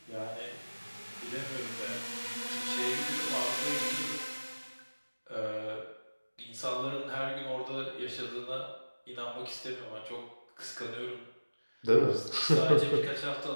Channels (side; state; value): both; inverted; correlation -1.00